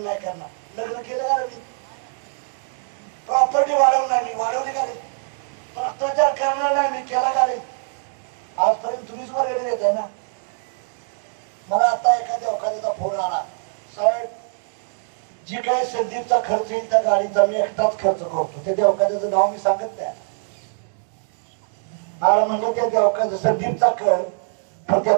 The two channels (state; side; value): silent; left; digital silence